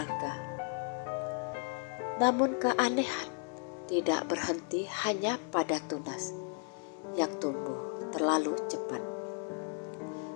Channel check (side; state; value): right; quieter; 39.5 dB